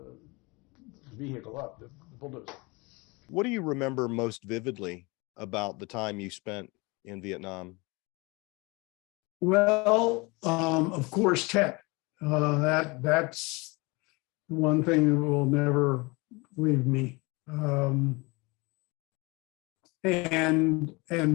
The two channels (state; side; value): quieter; right; 26.2 dB